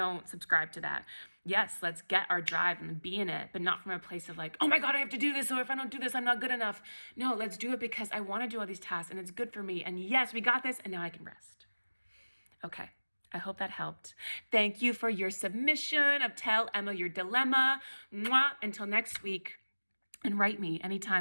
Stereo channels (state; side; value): inverted; both; correlation -1.00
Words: subscribe to that. Yes, let's get our drive and be in it, but not from a place of oh my God, I have to do this. So if I don't do this, I'm not good enough. No, let's do it because I want to do all these tasks and it's good for me. And yes, we got this. And now I can rest. Okay. I hope that helped. Thank you for your submission of Tell Emma Your Dilemma. Mwah. Until next week. And write me